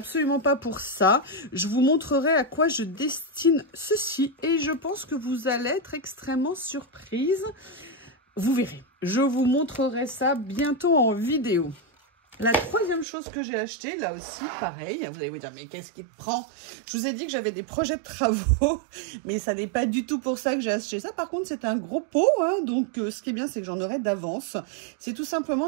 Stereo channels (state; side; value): drops out; left; at 13.1 s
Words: pas pour ça. Je vous montrerai à quoi je destine ceci. Et je pense que vous allez être extrêmement surprise. Vous verrez, je vous montrerai ça bientôt en vidéo. La troisième chose que j'ai achetée, là aussi, pareil, vous allez vous dire, mais qu'est-ce qui te prend? Je vous ai dit que j'avais des projets de travaux, mais ça n'est pas du tout pour ça que j'ai acheté ça. Par contre, c'est un gros pot, hein, donc ce qui est bien, c'est que j'en aurai d'avance. C'est tout